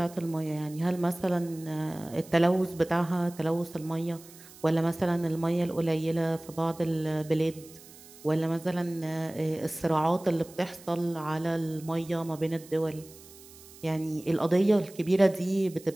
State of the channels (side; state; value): right; noise; hiss, 21 dB below the sound